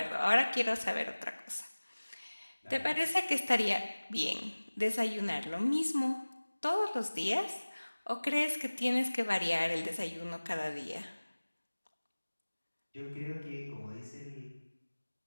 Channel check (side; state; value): both; inverted; correlation -1.00